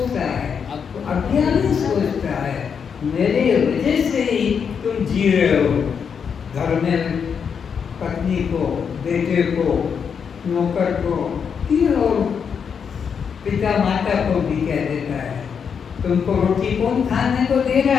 है? अज्ञानी सोचता है, मेरे वजह से ही तुम जी रहे हो। घर में पत्नी को, बेटे को, नौकर को, और पिता माता को भी कह देता है, तुमको रोटी कौन खाने को दे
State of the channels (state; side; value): quieter; right; 6.8 dB